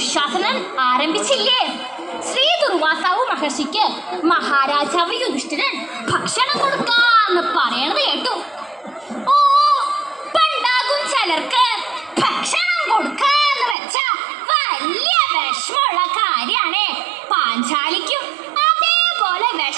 ആരംഭിച്ചില്ലേ? ശ്രീ ദുർവാസാവു മഹർഷിക്ക് മഹാരാജാവ് യുധിഷ്ഠിരൻ ഭക്ഷണം കൊടുക്കാന്ന് പറയണത് കേട്ടു. ഓ, പണ്ടാകും ചിലർക്ക് ഭക്ഷണം കൊടുക്കാന്ന് വെച്ചാ വലിയ വിഷമുള്ള കാര്യാണേ. പാഞ്ചാലിക്കും അതേപോലെ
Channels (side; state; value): left; drops out; at 13.8 s